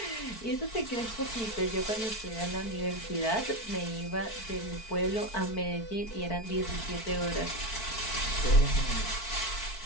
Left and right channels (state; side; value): late; right; 4.5 ms